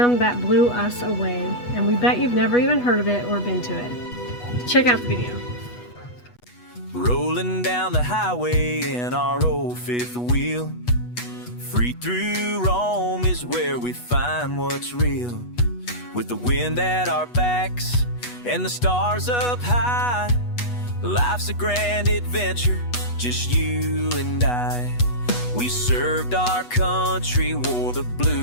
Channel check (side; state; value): right; late; 8.2 ms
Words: that blew us away, and we bet you've never even heard of it or been to it. Check out the video. Rolling down the highway in our old fifth wheel. Free through Rome is where we find what's real. With the wind at our backs and the stars up high, life's a grand adventure, just you and I. We served our country, wore the